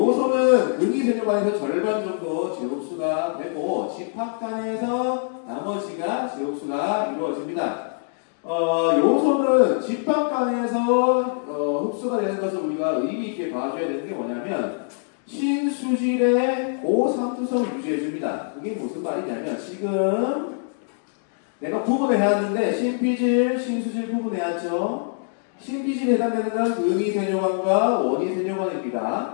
근위세뇨관에서 절반 정도 제흡수가 되고 집합관에서 나머지가 제흡수가 이루어집니다. 요소는 집합관에서 흡수가 되는 것을 우리가 의미 있게 봐줘야 되는 게 뭐냐면 신수질의 고상투성을 유지해줍니다. 그게 무슨 말이냐면 지금 내가 구분을 해왔는데 신피질, 신수질 구분해왔죠. 신피질에 해당되는 건 근위세뇨관과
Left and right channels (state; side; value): silent; right; digital silence